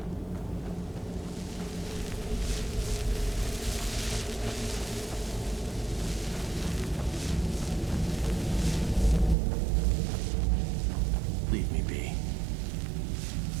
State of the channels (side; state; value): left; drops out; at 9.3 s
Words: Leave me be.